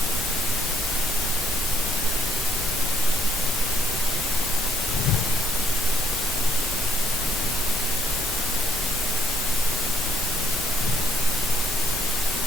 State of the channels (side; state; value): both; normal; correlation 0.71